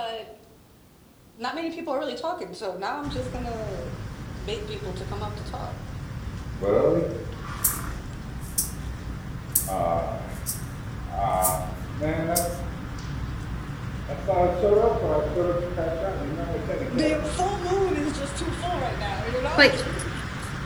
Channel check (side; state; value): both; identical; correlation 1.00